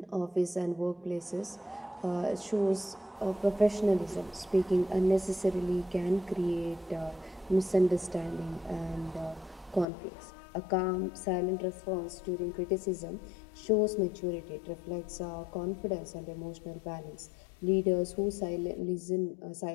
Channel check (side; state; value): right; drops out; at 9.9 s